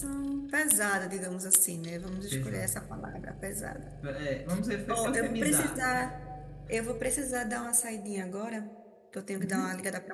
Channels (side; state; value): both; identical; correlation 1.00